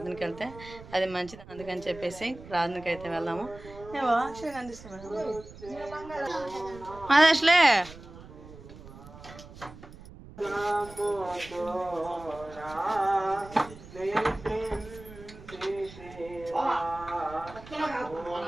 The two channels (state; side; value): noise; right; rumble, 17 dB below the sound